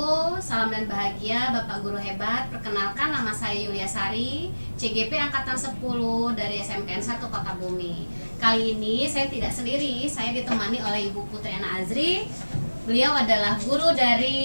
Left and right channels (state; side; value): inverted; both; correlation -1.00